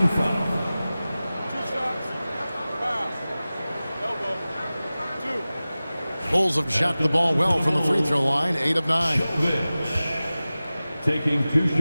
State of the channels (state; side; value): inverted; both; correlation -0.97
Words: foul. Bulls have shot the ball well from the free throw line. 8 of 9. Taking 2